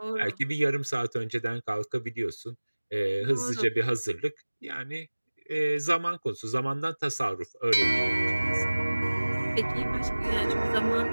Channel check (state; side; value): inverted; both; correlation -1.00